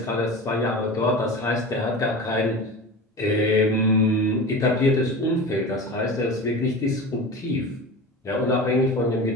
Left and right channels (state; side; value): normal; both; correlation 0.31